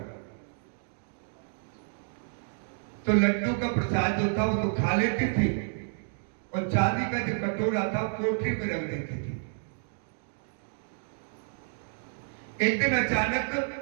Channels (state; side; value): silent; left; digital silence